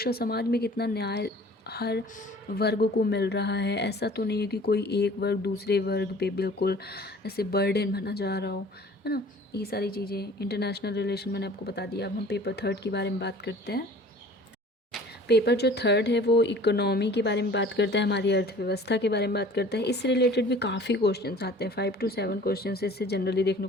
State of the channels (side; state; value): both; normal; correlation 0.48